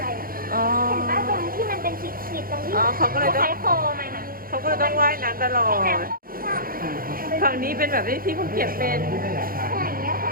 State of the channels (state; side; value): late; left; 0.42 ms